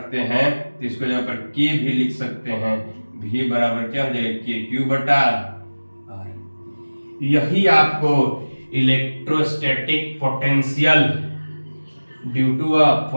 हैं तो इसको जगह पर K भी लिख सकते हैं, V बराबर क्या हो जाएगा के क्यू बटा R। यही आपको electrostatic potential due to a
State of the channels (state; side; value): inverted; both; correlation -1.00